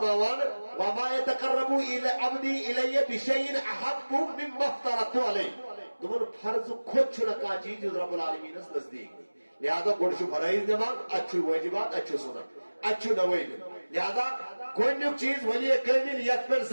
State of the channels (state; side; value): inverted; both; correlation -1.00